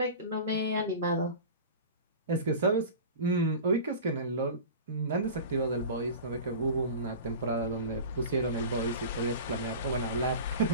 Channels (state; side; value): inverted; both; correlation -0.34